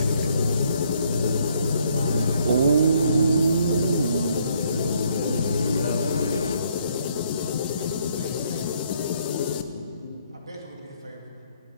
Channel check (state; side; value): inverted; both; correlation -0.68